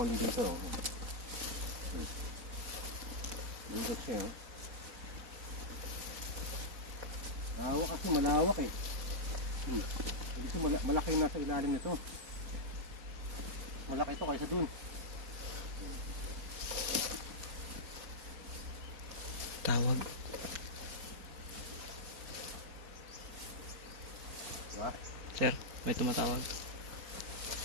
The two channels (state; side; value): late; left; 4.3 ms